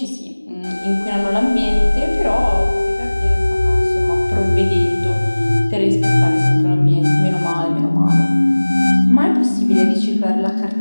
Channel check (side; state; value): both; inverted; correlation -1.00